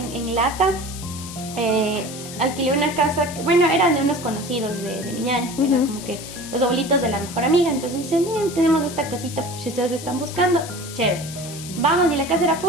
en Lata alquilé una casa, bueno, eran de unos conocidos de mi ñaña, que eran como que los abuelitos de la mejor amiga. Entonces dicen, miren, tenemos esta casita, si ustedes están buscando, chévere. Vamos, y la casa era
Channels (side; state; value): left; noise; hiss, 12 dB below the sound